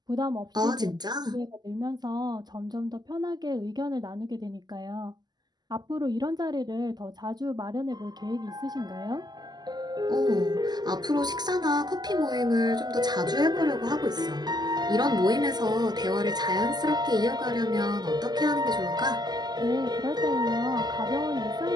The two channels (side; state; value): left; late; 0.20 ms